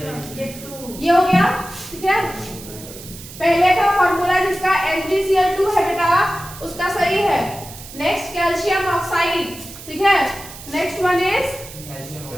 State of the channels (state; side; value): noise; right; hiss, 15 dB below the sound